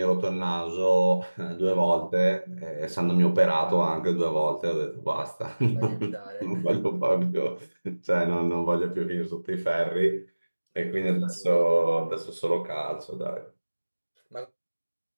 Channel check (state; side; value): inverted; both; correlation -1.00